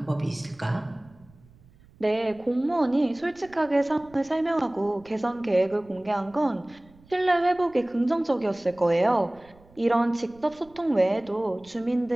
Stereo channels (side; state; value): right; noise; rumble, 27 dB below the sound